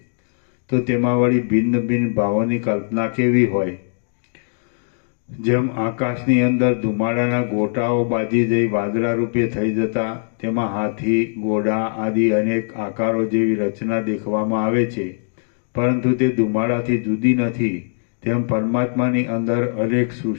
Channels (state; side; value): silent; right; digital silence